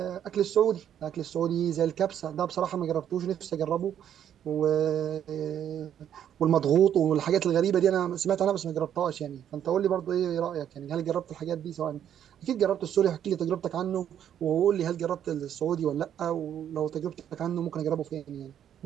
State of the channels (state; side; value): quieter; left; 9.8 dB